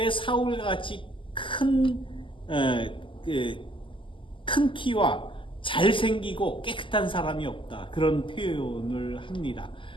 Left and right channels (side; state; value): right; late; 0.25 ms